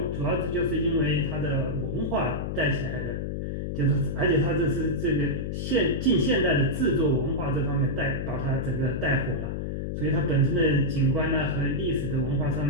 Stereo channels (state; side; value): noise; left; hum, 3 dB below the sound